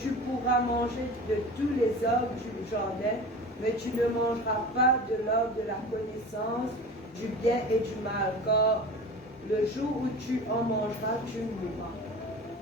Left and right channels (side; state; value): both; normal; correlation 0.35